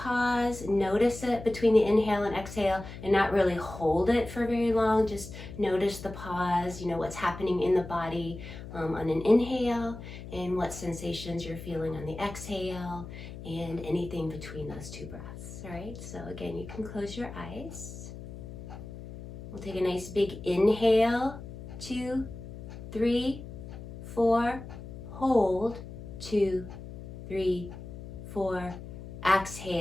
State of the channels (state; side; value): noise; left; hum, 12 dB below the sound